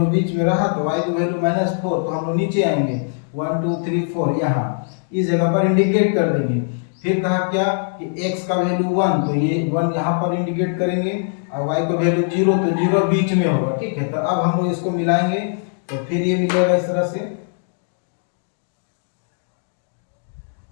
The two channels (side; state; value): right; silent; digital silence